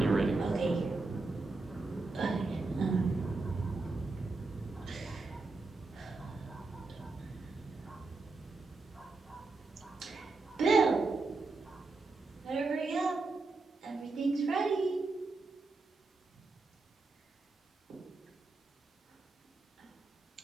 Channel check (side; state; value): left; quieter; 3.6 dB